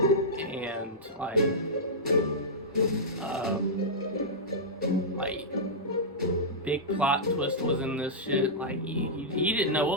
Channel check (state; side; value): normal; both; correlation -0.11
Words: and like big plot twist was in this shit. Like you didn't know